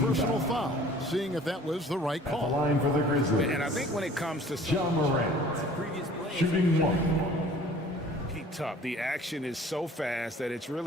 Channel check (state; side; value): normal; both; correlation 0.50